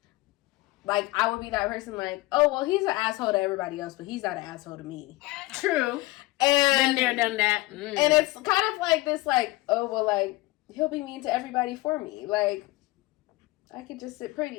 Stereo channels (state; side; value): quieter; right; 20.1 dB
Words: like, I would be that person like, oh, well, he's an asshole to everybody else, but he's not an asshole to me. True. And Been there, done that. And it's kind of like this, like, oh, well, like, he'll be mean to everybody for me. Like, I could just sit